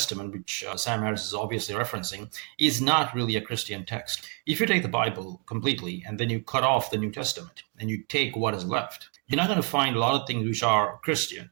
which Sam Harris is obviously referencing, is not really a Christian text. If you take the Bible completely and then you cut off the New Testament and you take what is left, you're not going to find a lot of things which are Christian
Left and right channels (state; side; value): quieter; left; 32.9 dB